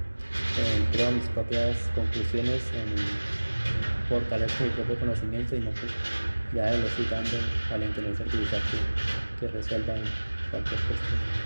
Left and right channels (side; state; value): both; inverted; correlation -1.00